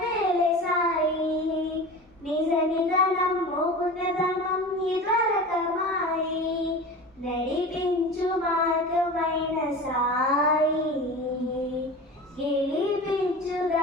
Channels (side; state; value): both; normal; correlation 0.33